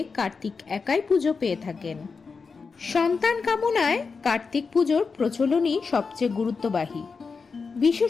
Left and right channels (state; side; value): quieter; right; 4.9 dB